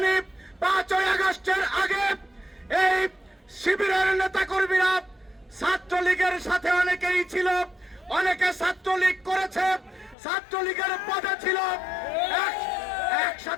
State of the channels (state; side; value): drops out; right; at 10.2 s